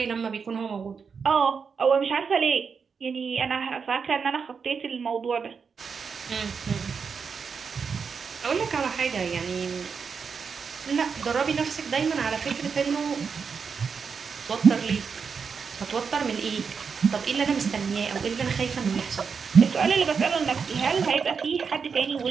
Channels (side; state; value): left; quieter; 5.8 dB